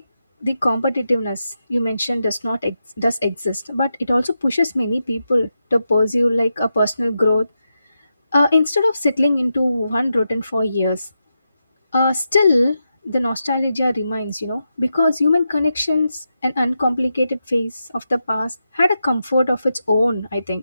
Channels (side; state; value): both; inverted; correlation -0.87